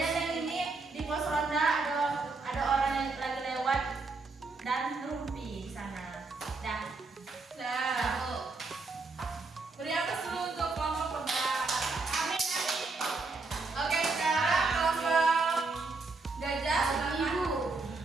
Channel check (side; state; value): left; quieter; 3.8 dB